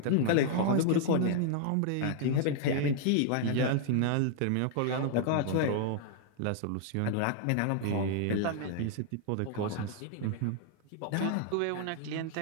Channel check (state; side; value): different; both; correlation 0.00